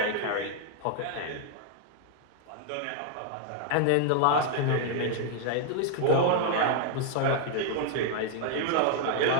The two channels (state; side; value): different; both; correlation 0.00